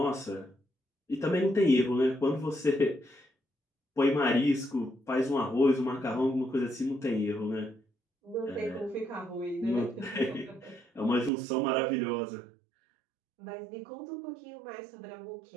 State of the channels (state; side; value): drops out; left; at 11.3 s